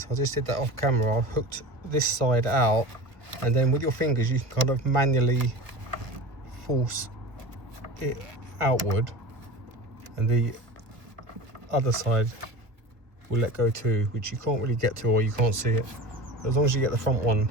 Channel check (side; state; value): left; late; 1.3 ms